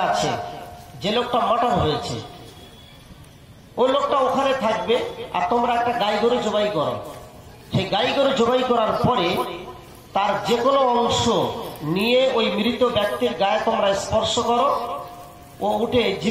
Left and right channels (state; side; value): identical; both; correlation 1.00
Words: আছে, যে লোকটা মার্ডার হয়েছে, ওই লোকটা ওখানে থাকবে, আর তোমরা একটা গাই গরু জবাই করো। সেই গাই গরু জবাই করার পরে তার যে কোনো অংশ নিয়ে ওই মৃত ব্যক্তির গায়ে তোমরা স্পর্শ করো, ও উঠে